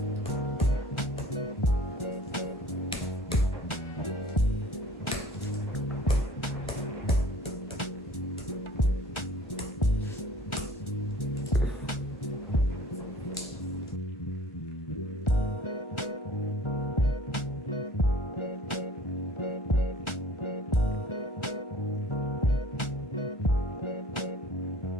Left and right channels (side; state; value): both; normal; correlation 0.49